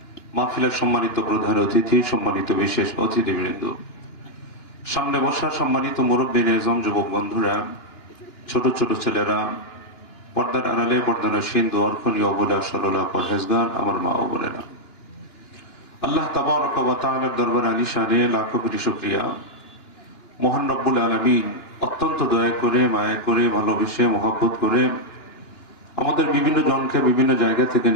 মাহফিলের সম্মানিত প্রধান অতিথি, সম্মানিত বিশেষ অতিথিবৃন্দ, সামনে বসা সম্মানিত মুরব্বিনে আজম, যুবক বন্ধুরা, ছোট ছোট ছেলেরা, পর্দার আড়ালে পর্দানশীন, দোয়ারখনি অবলা সরলা পরহেজগার, আমার মা ও বোনেরা, আল্লাহ তাবারক ওয়া তাআলার দরবারে আলিশানে লাখো কোটি শুকরিয়া। মহান রব্বুল আলামিন অত্যন্ত দয়া করে, মায়া করে, ভালোবেসে, মহব্বত করে আমাদের বিভিন্ন জনকে বিভিন্ন জায়গা থেকে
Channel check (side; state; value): right; late; 2.9 ms